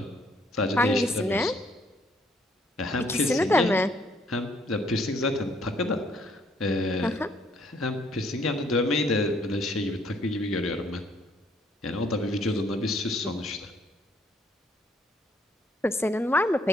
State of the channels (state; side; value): normal; both; correlation 0.66